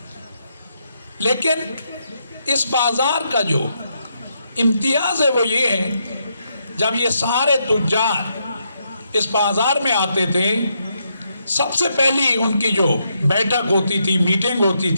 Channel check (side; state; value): both; inverted; correlation -0.79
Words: لیکن اس بازار کا جو امتیاز ہے وہ یہ ہے، جب یہ سارے تجار اس بازار میں آتے تھے، سب سے پہلی ان کی جو بیٹھک ہوتی تھی، میٹنگ ہوتی